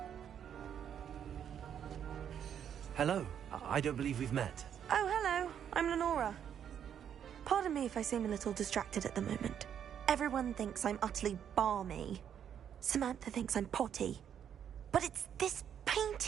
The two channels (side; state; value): left; quieter; 8.9 dB